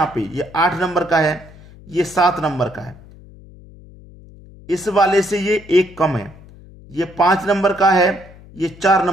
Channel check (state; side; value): noise; left; hum, 21 dB below the sound